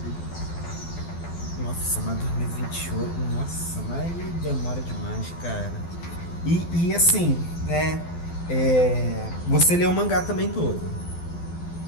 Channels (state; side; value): late; right; 12 ms